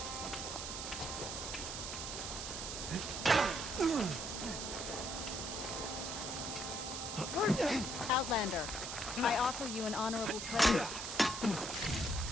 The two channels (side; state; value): right; noise; hiss, 5 dB below the sound